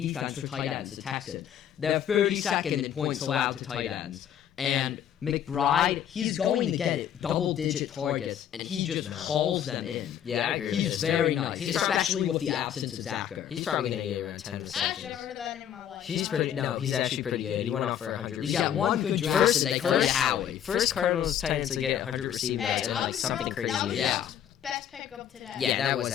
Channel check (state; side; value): quieter; right; 9.9 dB